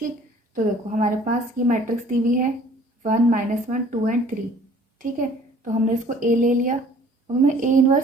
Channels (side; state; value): both; normal; correlation 0.53